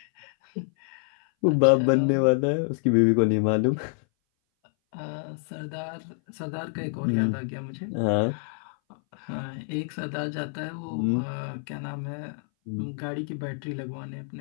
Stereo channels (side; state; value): right; silent; 58 dB below the other